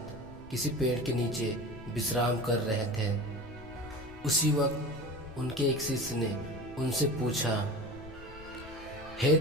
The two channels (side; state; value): left; noise; rumble, 18 dB below the sound